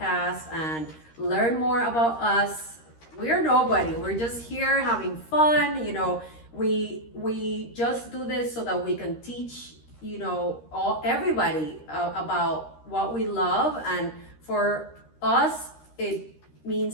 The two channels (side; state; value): right; late; 13 ms